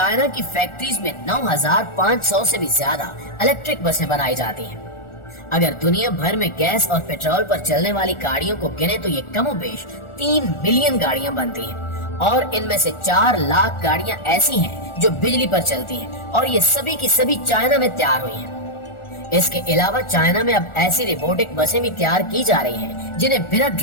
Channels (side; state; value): right; late; 1.4 ms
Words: की फैक्ट्रीज में 9500 से भी ज्यादा इलेक्ट्रिक बसें बनाई जाती हैं। अगर दुनिया भर में गैस और पेट्रोल पर चलने वाली गाड़ियों को गिने तो ये कमोबेश 3 मिलियन गाड़ियां बनती हैं और इनमें से 4 लाख गाड़ियां ऐसी हैं जो बिजली पर चलती हैं और ये सभी की सभी चाइना में तैयार हुई हैं। इसके अलावा चाइना में अब ऐसी रोबोटिक बसें भी तैयार की जा रही हैं जिन्हें बिना